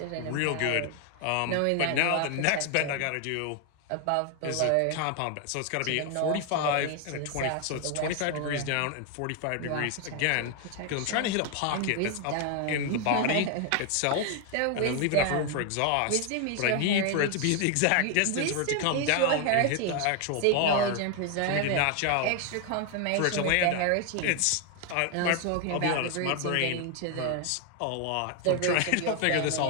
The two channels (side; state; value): both; different; correlation 0.01